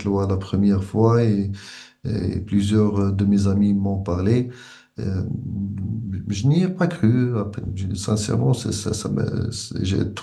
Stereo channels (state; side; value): identical; both; correlation 1.00